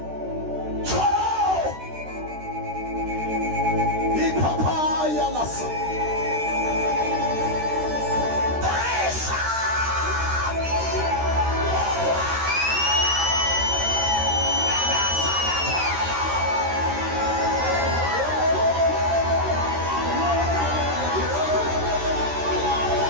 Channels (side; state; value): left; late; 13 ms